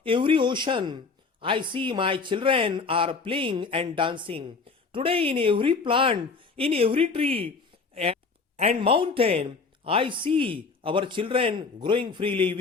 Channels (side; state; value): right; quieter; 4.6 dB